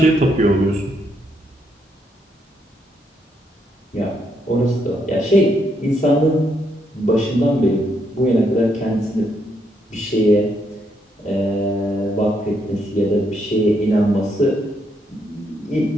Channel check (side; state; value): both; normal; correlation 0.76